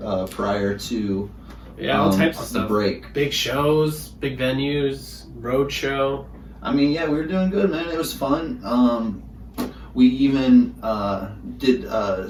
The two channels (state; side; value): identical; both; correlation 1.00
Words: prior to all types of the stuff. Break. Big shows, big venues, road show. We were doing good, man. It was fun. We even did